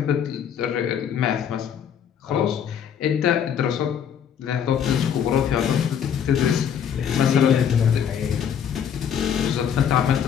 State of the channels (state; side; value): quieter; right; 8.4 dB